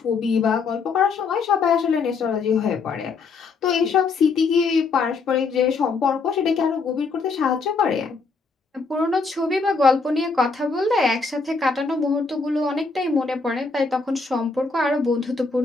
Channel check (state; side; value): quieter; right; 4.4 dB